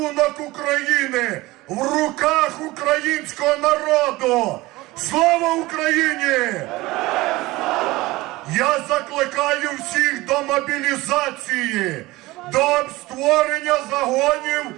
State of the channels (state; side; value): quieter; left; 19.9 dB